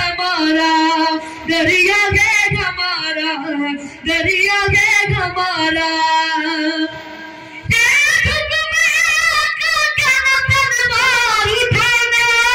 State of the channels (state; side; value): identical; both; correlation 1.00